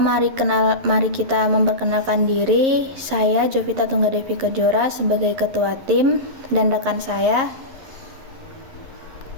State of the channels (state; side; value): late; left; 11 ms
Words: mari kita memperkenalkan diri. Saya Jovita Tunggadevi Kejora sebagai ketua tim dan rekan saya.